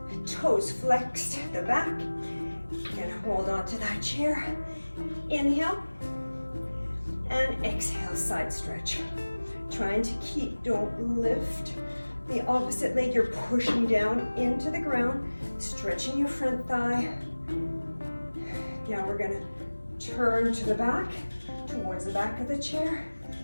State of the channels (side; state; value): both; inverted; correlation -1.00